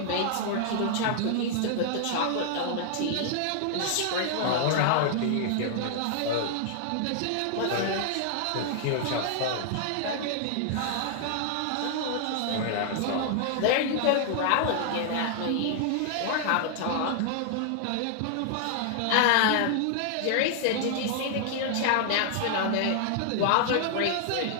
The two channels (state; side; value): different; both; correlation 0.00